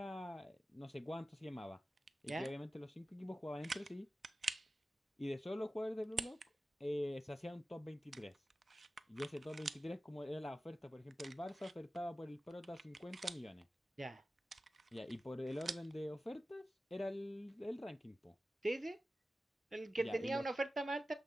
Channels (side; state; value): both; normal; correlation 0.95